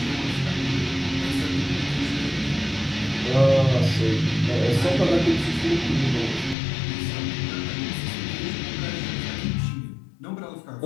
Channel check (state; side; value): drops out; right; at 6.6 s